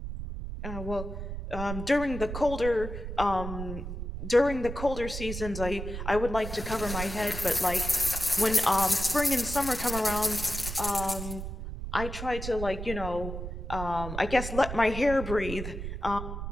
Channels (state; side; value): noise; right; rumble, 7 dB below the sound